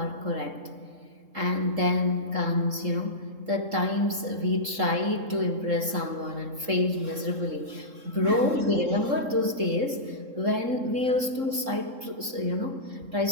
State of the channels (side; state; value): left; late; 3.7 ms